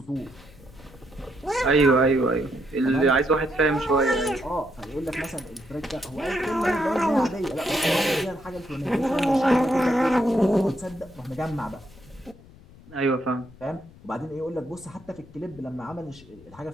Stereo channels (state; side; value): noise; left; rumble, 22 dB below the sound